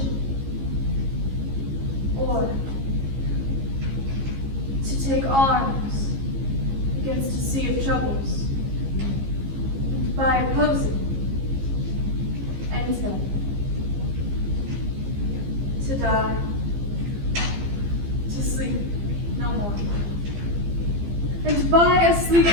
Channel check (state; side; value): late; left; 15 ms